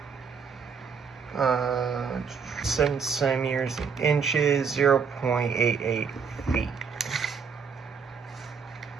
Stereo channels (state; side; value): quieter; left; 6.0 dB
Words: 7 centimeters in inches, 0.88 feet.